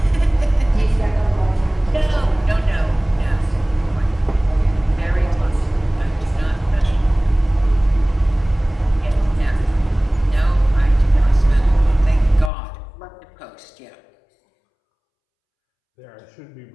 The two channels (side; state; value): right; drops out; at 12.5 s